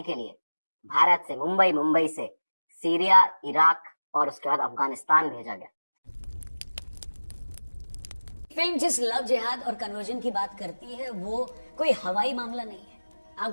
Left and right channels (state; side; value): inverted; both; correlation -1.00